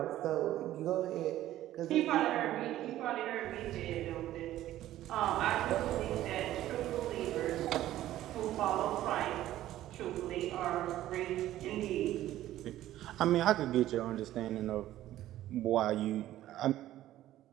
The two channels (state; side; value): quieter; left; 13.8 dB